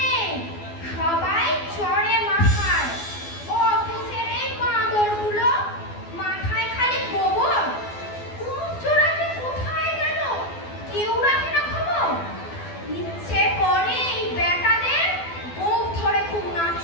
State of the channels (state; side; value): late; right; 12 ms